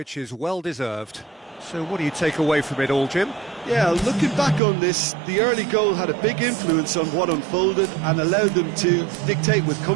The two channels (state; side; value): drops out; left; at 4.6 s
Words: is well deserved. So what do you take away from it all, Jim? Yeah, looking back on this, the early goal had a big influence on what unfolded and allowed them to dictate with